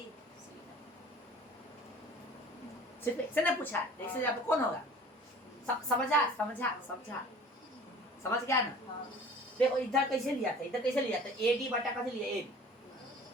सिर्फ x से ना पूछा है, x से यहाँ पे कौन होगा, समझा समझा समझा, समझ गया ना। देखो इधर कैसे लिया था, इधर कैसे लिया था, AD बटा कैसे लिया, AB,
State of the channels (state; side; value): normal; both; correlation 0.46